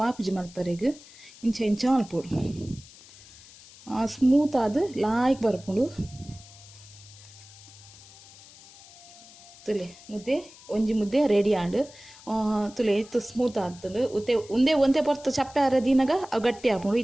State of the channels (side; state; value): left; noise; hiss, 21 dB below the sound